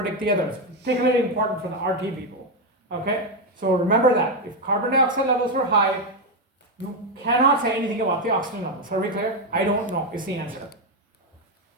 the others. Particularly important for the RT people. Okay? So remember that. If carbon dioxide levels were high, you cannot say anything about the oxygen levels. Are we clear? I don't know is the answer.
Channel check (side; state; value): both; normal; correlation 0.06